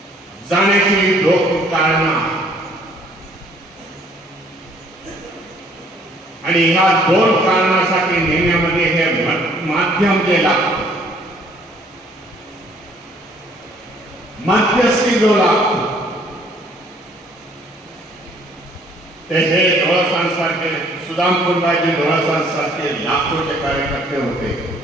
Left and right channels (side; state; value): both; normal; correlation 0.61